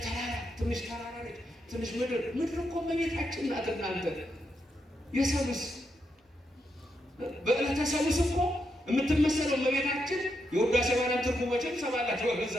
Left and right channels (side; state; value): both; normal; correlation 0.82